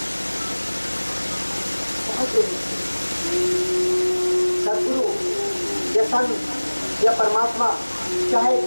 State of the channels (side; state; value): both; inverted; correlation -1.00